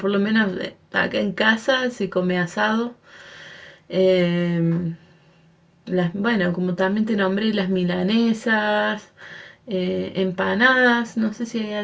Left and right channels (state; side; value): identical; both; correlation 1.00